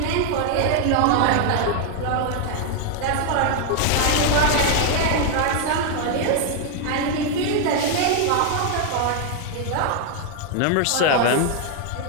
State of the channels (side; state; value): both; different; correlation 0.00